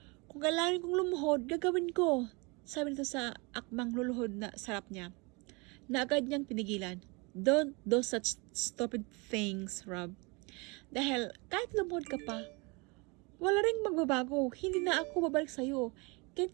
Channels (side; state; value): left; quieter; 28.4 dB